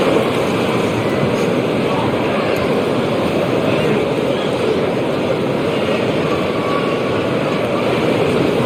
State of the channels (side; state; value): both; identical; correlation 1.00